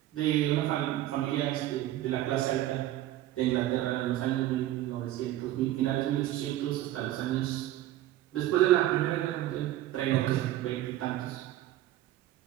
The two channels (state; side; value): quieter; left; 14.3 dB